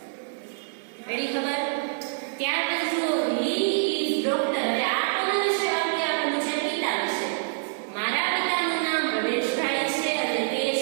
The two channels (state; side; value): silent; left; digital silence